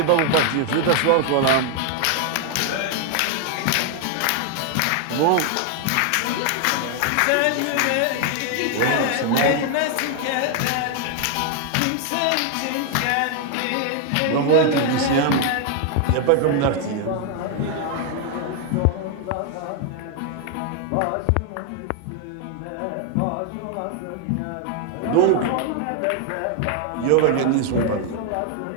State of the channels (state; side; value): different; both; correlation 0.00